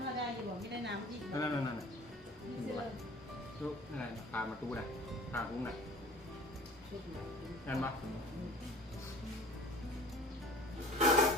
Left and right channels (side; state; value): both; normal; correlation 0.44